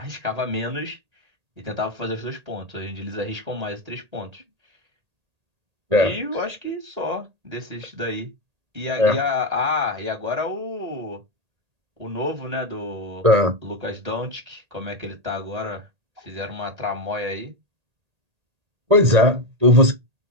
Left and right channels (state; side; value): late; left; 1.8 ms